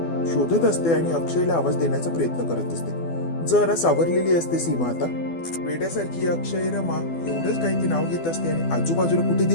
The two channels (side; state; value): right; late; 12 ms